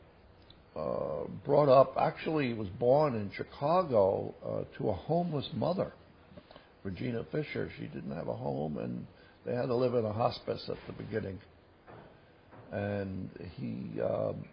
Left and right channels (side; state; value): both; identical; correlation 1.00